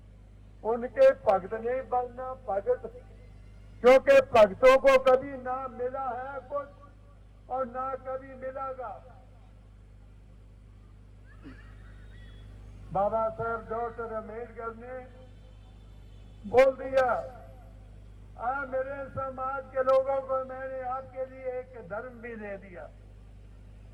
उनके भक्त नहीं बनना। भगत, क्योंकि भक्तों को कभी ना मिला है कुछ और ना कभी मिलेगा। बाबा साहब डॉक्टर अम्बेडकर ने बोल दिया, मेरे समाज के लोगों को मैंने आपके लिए एक धर्म भी दे दिया,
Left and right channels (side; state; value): both; identical; correlation 1.00